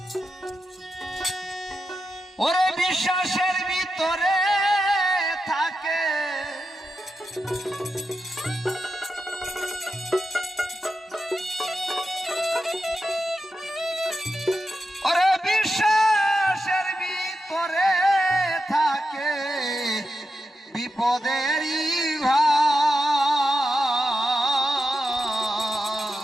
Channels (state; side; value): normal; both; correlation 0.88